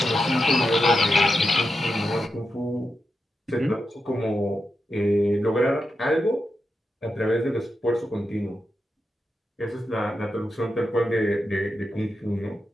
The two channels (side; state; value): both; normal; correlation 0.88